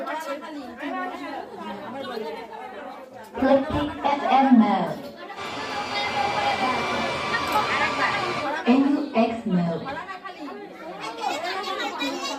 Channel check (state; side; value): identical; both; correlation 1.00